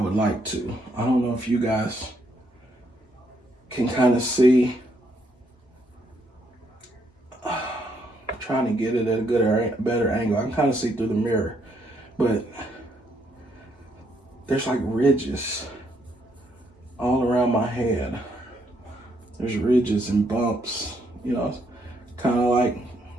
like to. I don't know if you guys can kind of see. I'm trying to get it at a better angle. I can kind of see through the mirror, but there's like ridges all around my head. There's ridges and bumps, kind of like,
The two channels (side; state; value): both; normal; correlation 0.73